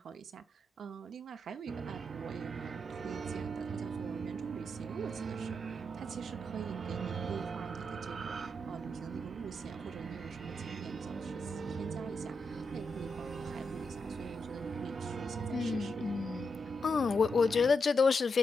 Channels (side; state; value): both; normal; correlation 0.84